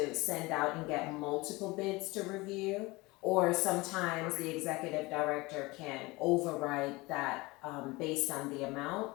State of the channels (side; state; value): right; quieter; 22.6 dB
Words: send out and get multiple bids to review. Or sometimes the executive director can override that based on the amount.